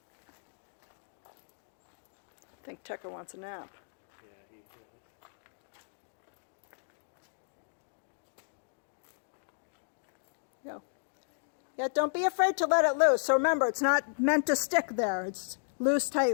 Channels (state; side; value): silent; right; digital silence